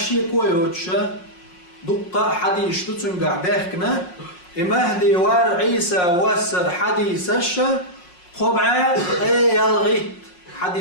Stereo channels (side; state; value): right; late; 5.6 ms